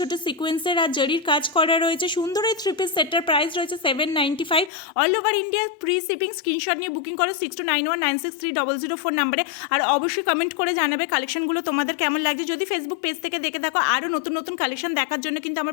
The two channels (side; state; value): right; drops out; at 4.7 s